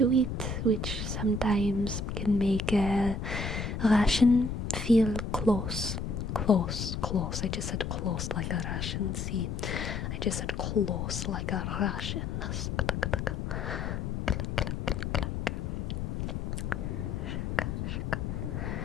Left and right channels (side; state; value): left; noise; rumble, 3 dB below the sound